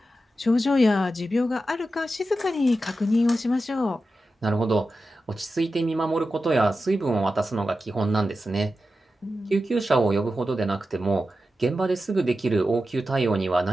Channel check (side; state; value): both; normal; correlation 0.91